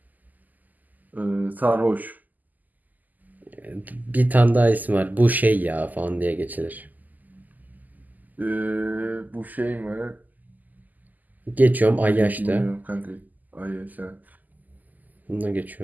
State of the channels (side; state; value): left; late; 0.082 ms